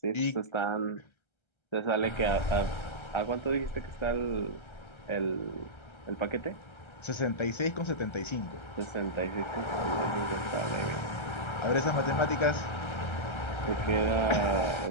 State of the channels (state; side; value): late; right; 1.3 ms